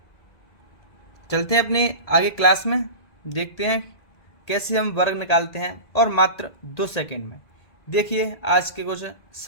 चलते हैं अपने आगे क्लास में। देखते हैं कैसे हम वर्ग निकालते हैं और मात्र 2 सेकंड में। देखिए आज के कुछ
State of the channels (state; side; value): late; right; 2.0 ms